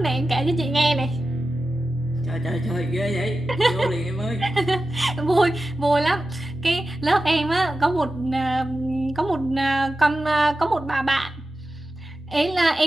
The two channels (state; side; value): normal; both; correlation 0.93